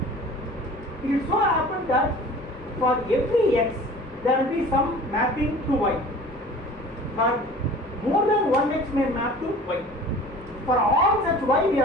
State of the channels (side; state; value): both; normal; correlation 0.44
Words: It so happens that for every x, there will be some mapping to y, but more than one x may map to y. For all such y, we